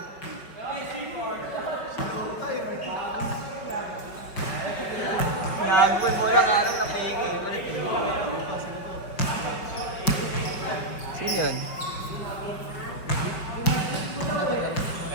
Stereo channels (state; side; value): late; right; 5.3 ms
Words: Nagpoy mo lang araw na pegi. Sino yun?